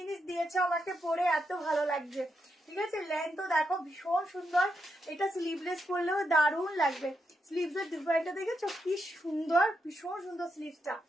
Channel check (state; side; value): normal; both; correlation 0.83